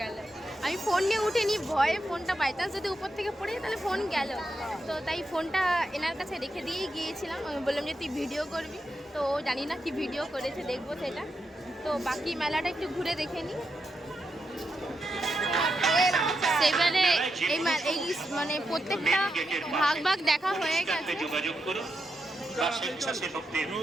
গেল। আমি ফোন নিয়ে উঠিনি, ভয়ে ফোনটা বাই চান্স যদি উপর থেকে পড়ে তাহলে ফোন গেল। তো তাই ফোনটা এনার কাছে রেখে দিয়েই গিয়েছিলাম। আমি বললাম যে তুই ভিডিও করবি, তো জানি না কি ভিডিও করেছে, দেখবো সেটা। তো বাকি মেলাটা একটু ঘুরে দেখে নিই। সেবারে এই মানে প্রত্যেকটা ভাগ ভাগ দেখা হয়ে গেছে। যোগাযোগ করুন বা স্বেচ্ছাসেবকদের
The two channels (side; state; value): both; normal; correlation 0.85